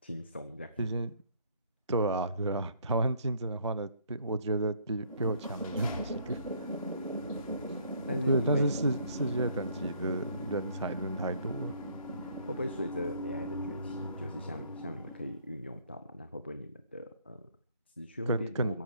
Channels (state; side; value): inverted; both; correlation -0.61